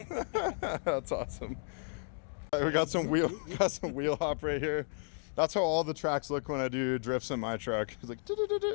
That's awesome. We got some wheel hop right here. That's how all the tracks look when I do drifts in my truck. It's like.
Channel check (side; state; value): right; silent; 56 dB below the other